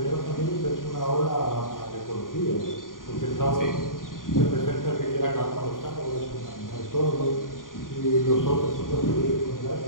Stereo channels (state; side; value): late; right; 0.90 ms